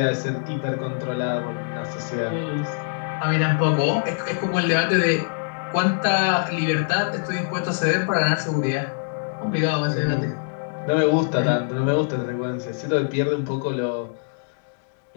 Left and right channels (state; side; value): silent; right; digital silence